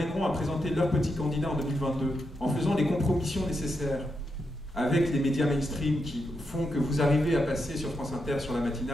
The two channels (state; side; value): normal; both; correlation 0.84